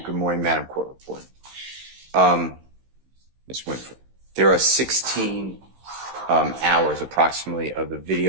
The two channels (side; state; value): left; late; 15 ms